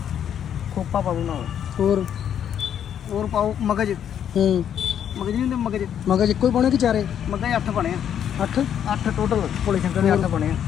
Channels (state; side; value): quieter; right; 9.3 dB